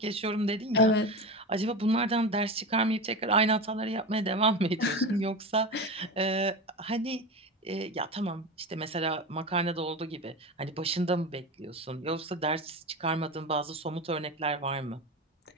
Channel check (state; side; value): normal; both; correlation 0.24